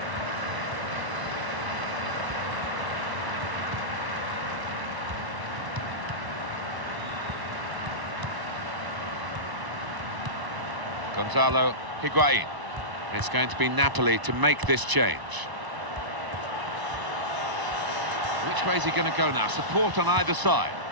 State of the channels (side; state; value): left; late; 1.0 ms